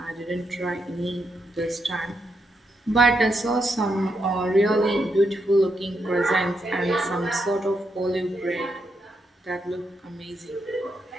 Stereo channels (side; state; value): both; normal; correlation 0.81